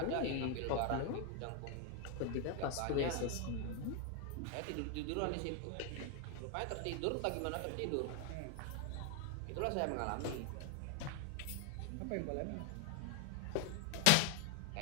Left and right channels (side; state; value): both; different; correlation 0.00